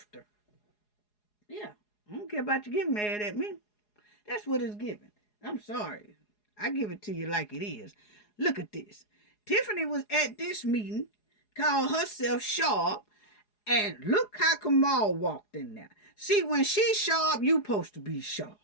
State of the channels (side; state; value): right; late; 4.8 ms